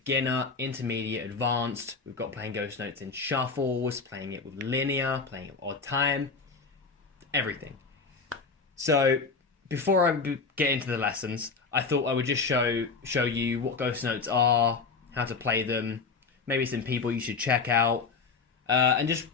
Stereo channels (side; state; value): right; quieter; 4.7 dB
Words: intermediate, advanced. We've got playing ghost notes in shuffles, playing it with linear, playing it with odd time, everything. So before I get into the lessons, I thought I would just show you what ghost notes are, how to play them, maybe some people you should check out, and just